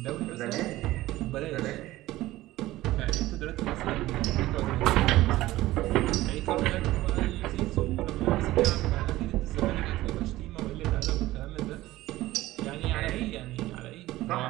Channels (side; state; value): left; quieter; 16.8 dB